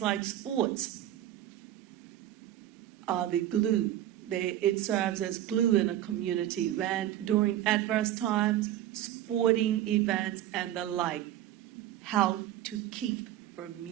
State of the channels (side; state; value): left; quieter; 12.7 dB